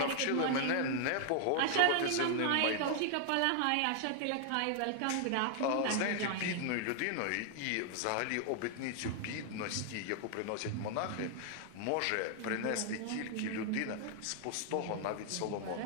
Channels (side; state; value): both; different; correlation 0.00